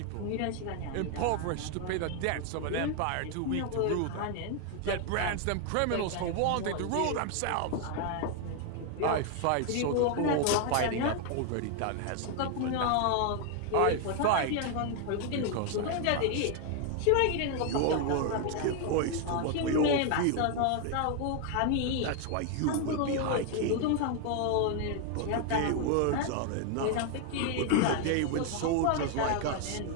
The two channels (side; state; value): both; different; correlation 0.00